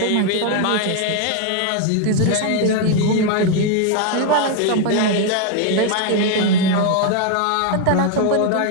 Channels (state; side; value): different; both; correlation 0.01